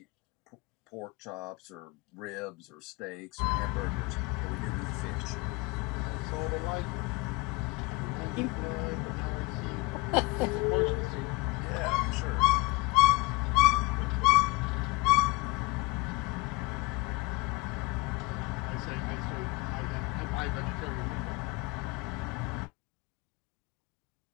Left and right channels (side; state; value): right; quieter; 23.2 dB